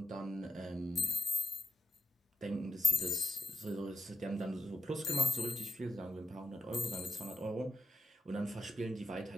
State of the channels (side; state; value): both; normal; correlation 0.87